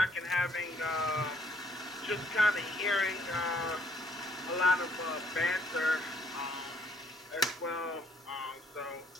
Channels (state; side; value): normal; both; correlation 0.65